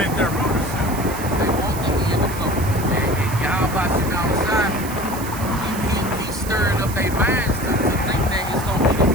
their rulership. They want the end to come. And y'all about sitting outside, he's stirring up their minds to think that it's going to be the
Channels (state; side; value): noise; right; hiss, 12 dB below the sound